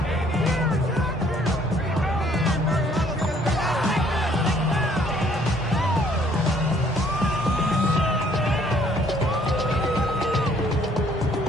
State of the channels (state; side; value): normal; both; correlation 0.62